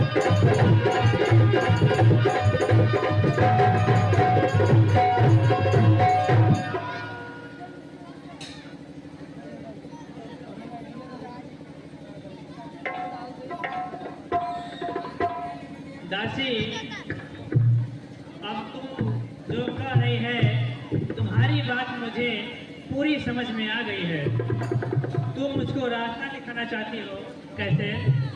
दासी, अब तुम जो कह रही है, तुम्हारी बात मुझे पूरी समझ में आ गई है। तुम मुझको रास्ता दिखाना चाहती हो, कैसे?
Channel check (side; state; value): both; identical; correlation 1.00